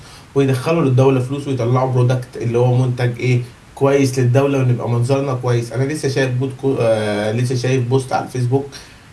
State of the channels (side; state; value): both; identical; correlation 1.00